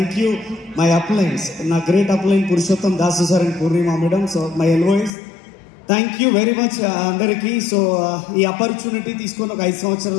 you my uplines, నా great upline Purushottam Dasu sir and Purnima madam. So my LOS, thank you very much అందరికీ. సో ఈ opportunity తీసుకొని ఒక 5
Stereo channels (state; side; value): drops out; right; at 5.1 s